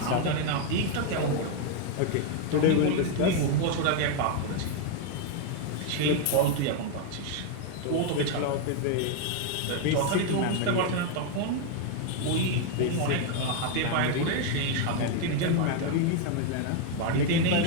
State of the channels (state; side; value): different; both; correlation 0.01